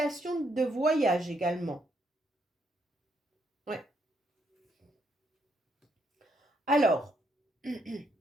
de voyage également. Ouais. Alors,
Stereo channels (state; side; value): normal; both; correlation 0.75